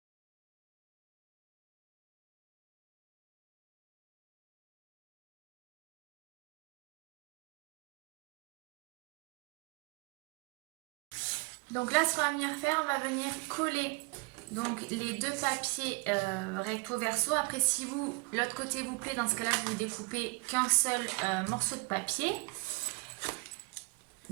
Donc là, ce qu'on va venir faire, on va venir coller donc les deux papiers recto verso. Après, si vous l'autre côté vous plaît, dans ce cas-là, vous découpez qu'un seul morceau de papier.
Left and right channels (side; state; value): left; quieter; 27.9 dB